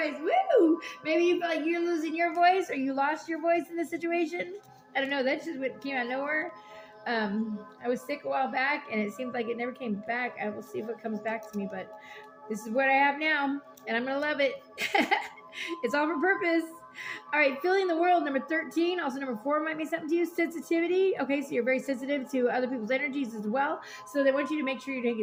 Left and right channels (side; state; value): both; identical; correlation 1.00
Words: Woo! Maybe you feel like you're losing your voice or you lost your voice in this situation. I don't know. That's just what came out of nowhere. I was sick a while back and it seems like it never came back. I will see if it comes back to me, but this is what I have now and I'm going to love it. It's all for purpose. All right, feeling the world, number 13. Also, number 4 might mean something to you. Sensitivity. Okay, so you're very sensitive to other people's energies as well. So they want you to make sure you're